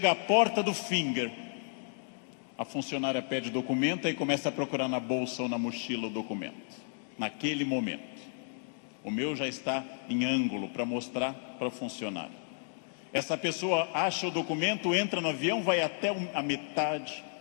à porta do Finger, a funcionária pede documento e começa a procurar na bolsa ou na mochila o documento. Naquele momento. O meu já está em ângulo para mostrar para o funcionário. Essa pessoa acha o documento, entra no avião, vai até a metade.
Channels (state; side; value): silent; right; digital silence